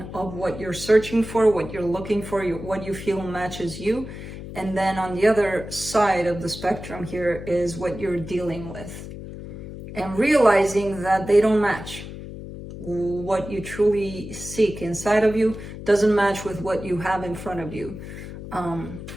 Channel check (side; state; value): left; noise; hum, 11 dB below the sound